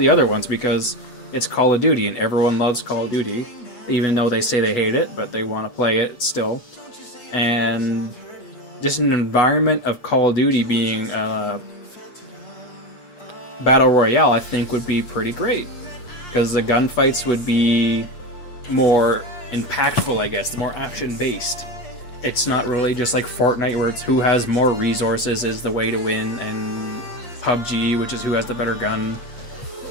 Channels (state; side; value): late; right; 8.2 ms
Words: other ones, because it's Call of Duty and everyone loves Call of Duty, even though they say they hate it, but they want to play it still. And just an environment of Call of Duty being Battle Royale, I think would be pretty great, because the gunfights would be more impactful, I guess, more action-based. It's not really just like Fortnite, where it's who has more resources is the way to win, and PUBG, which is who has the better gun.